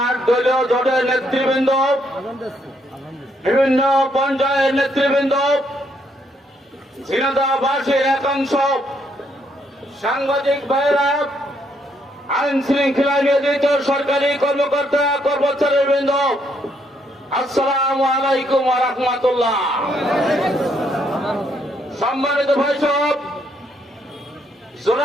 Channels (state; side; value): normal; both; correlation 0.73